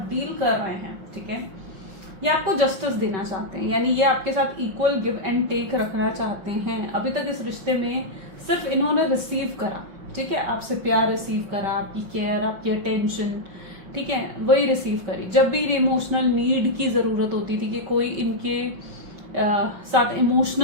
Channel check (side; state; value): left; late; 5.2 ms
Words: डील कर रहे हैं, ठीक है, ये आपको जस्टिस देना चाहते हैं, यानी ये आपके साथ इक्वल गिव एंड टेक रखना चाहते हैं। अभी तक इस रिश्ते में सिर्फ इन्होंने रिसीव करा, ठीक है, आपसे प्यार रिसीव करा, आपकी केयर, आपकी अटेंशन, ठीक है, वही रिसीव करी। जब भी इमोशनल नीड की जरूरत होती थी कि कोई इनके साथ